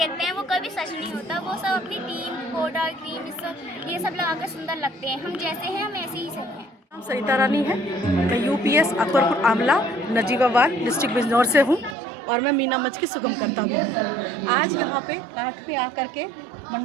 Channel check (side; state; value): left; drops out; at 12.0 s